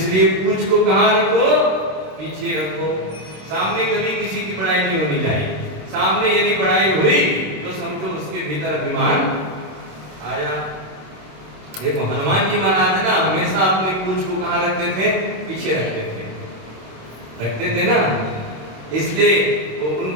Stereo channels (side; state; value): left; late; 26 ms